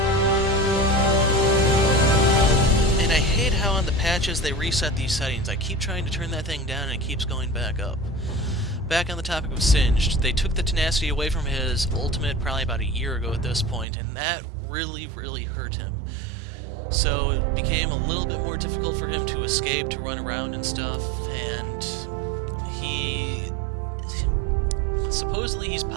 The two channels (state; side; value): drops out; left; at 13.9 s